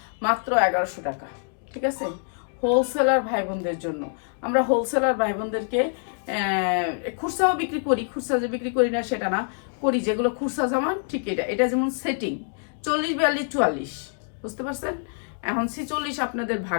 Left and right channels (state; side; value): silent; right; 59 dB below the other